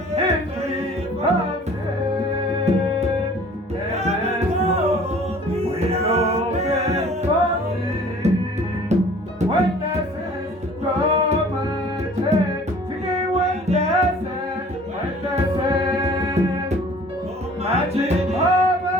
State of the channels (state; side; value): normal; both; correlation 0.50